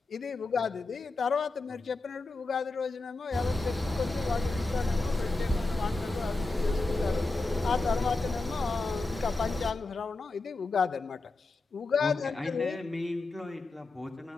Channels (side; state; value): right; quieter; 3.3 dB